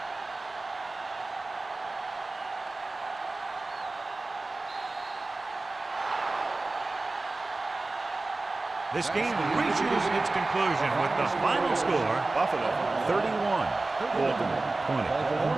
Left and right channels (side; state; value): left; quieter; 3.2 dB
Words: This game reaches its conclusion with the final score, Buffalo 31, Baltimore 20.